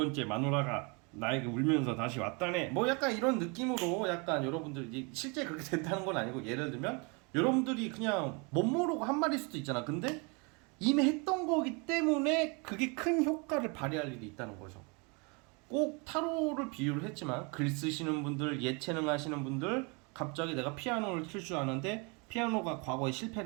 마누라가 나에게 울면서 다시 왔다네. 뭐 약간 이런 느낌으로 약간 여러분들이 실제 그렇게 된다는 건 아니고, 예를 들면 여러분들이 그냥 못 모르고 한 말일 수도 있잖아. 근데 이미 했던 거기 때문에 그게 큰 효과를 발휘할 일이 있다는 거죠. 꼭 타로를 비유를 했지만 글 쓰시는 분들, 예체능 하시는 분들, 갑자기 내가 피아노를 칠 줄 아는데 피아노가 과거에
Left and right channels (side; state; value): left; quieter; 31.6 dB